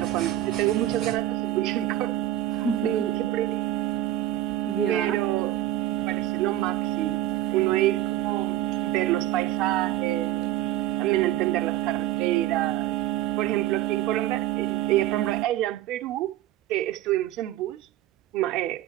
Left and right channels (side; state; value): left; quieter; 13.7 dB